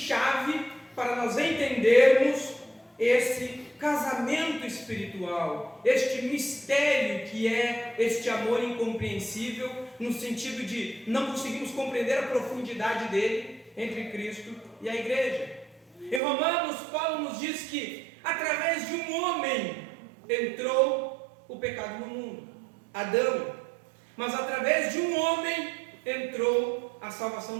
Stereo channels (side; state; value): left; drops out; at 16.2 s